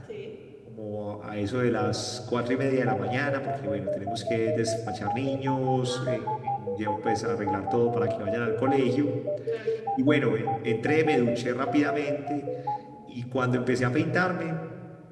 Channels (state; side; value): identical; both; correlation 1.00